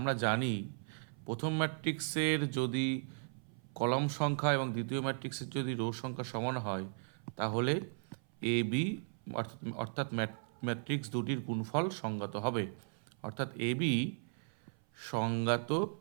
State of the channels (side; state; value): left; silent; 53 dB below the other